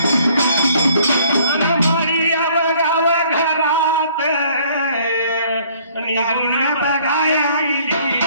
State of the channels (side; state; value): both; inverted; correlation -0.59